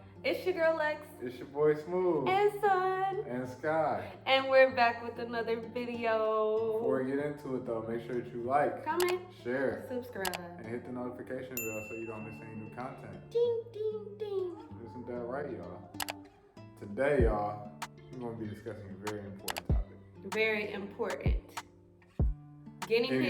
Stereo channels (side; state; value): both; identical; correlation 1.00